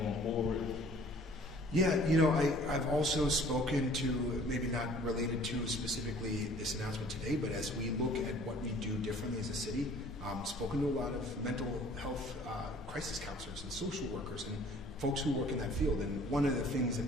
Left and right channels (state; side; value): normal; both; correlation 0.52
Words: forward? Yeah, I've also spoken to, maybe not related to specifically this announcement today, but as we look at what we do differently as a city, spoken to a lot of mental health crisis counselors and social workers and folks who work in that field. And one of the things